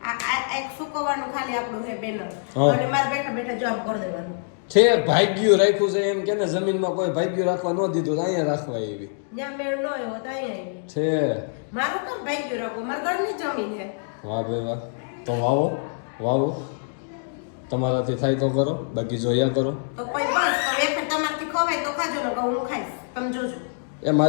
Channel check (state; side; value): silent; right; digital silence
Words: આ એક સુકવવાનું ખાલી આપણું હે બેનર. અને મારે બેઠા બેઠા જોબ કરી દેવાનું. છે ભાગ્યું રાખ્યું છે એમ કે ને જમીનમાં કોઈ ભાગ્યું રાખવા ન દીધું તો અહીંયા રાખવા એવી જ્યાં મેળ ન હોય તો અહીંયા આવી છે. મારું કામ ભાગ્યું રાખવું. મારા ઘરની જમીન છે. વાહ ભાઈ વાહ. તો વાવો તમારાથી થાય તો કરો, બાકી જોયા કરો. તો કોઈ બસ હવે તમારથી ખવાય તો ખાજો ને હું ખાઈશ. તમે જોજો. એ